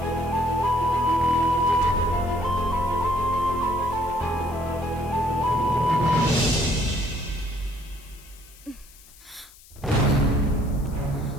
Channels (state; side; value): noise; left; hiss, 23 dB below the sound